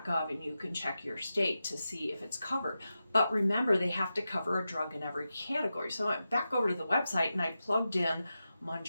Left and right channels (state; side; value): inverted; both; correlation -0.91